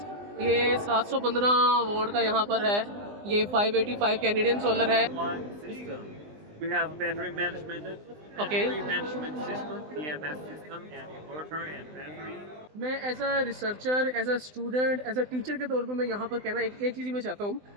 ये 715 वोल्ट का यहाँ पर है। ये 585 कैनेडियन सोलर है। We have battery management, Okay. battery management system, EMS system, and inverter and battery. मैं as a researcher, as a student, as a teacher के तौर पे मैं यहाँ पर कहना एक चीज़ मैं चाहता हूँ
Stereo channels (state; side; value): late; left; 20 ms